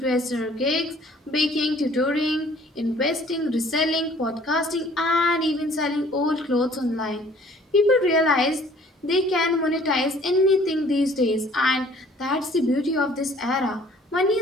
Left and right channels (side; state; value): both; normal; correlation 0.55